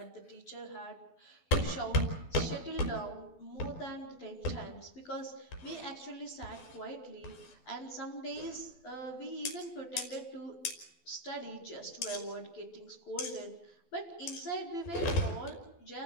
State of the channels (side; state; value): right; late; 12 ms